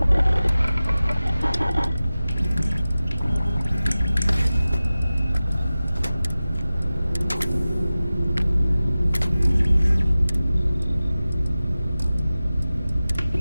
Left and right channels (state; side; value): inverted; both; correlation -0.96